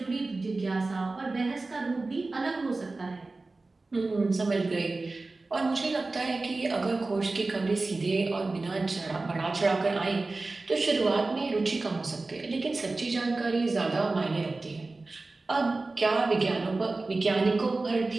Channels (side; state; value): left; quieter; 3.4 dB